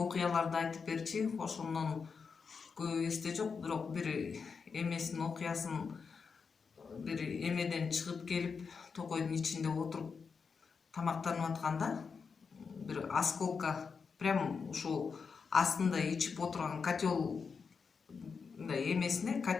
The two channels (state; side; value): quieter; right; 5.5 dB